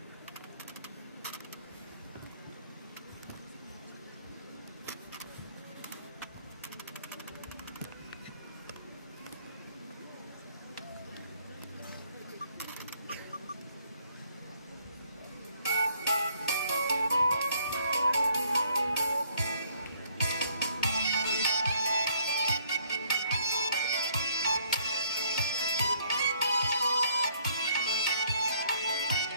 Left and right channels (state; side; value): inverted; both; correlation -0.64